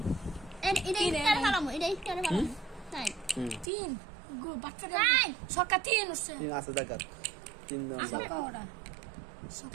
এটা ভালো এটা ভালো তাই 3 গো বাচ্চা নাই ছক্কা 3 হচ্ছে 3 আছে দেখা 3 দাও ছক্কা ওটা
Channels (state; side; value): drops out; left; at 3.7 s